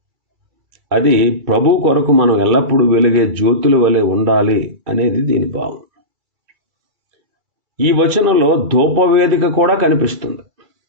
అది ప్రభు కొరకు మనం ఎల్లప్పుడూ వెలిగే జ్యోతుల వలె ఉండాలి అనేది దీని భావం. ఈ వచనంలో ధూపవేదిక కూడా కనిపిస్తుంది.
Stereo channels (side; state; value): left; late; 2.3 ms